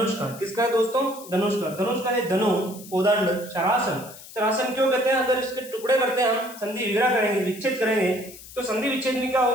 का। किसका है दोस्तों, धनुष का। धनुष का है धनु, कोदंड, शरासन। शरासन क्यों कहते हैं, अगर इसके टुकड़े करते हैं हम, संधि विग्रह करेंगे, विच्छेद करेंगे, तो संधि विच्छेद में क्या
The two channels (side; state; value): left; noise; hiss, 17 dB below the sound